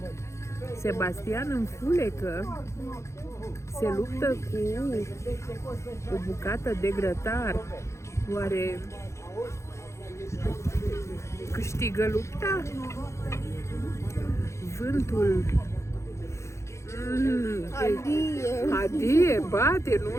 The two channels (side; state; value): right; late; 0.14 ms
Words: Sebastian înfulecă, se luptă cu o bucată de grătar. Oare câștigă lupta? Vântul adie, bate, nu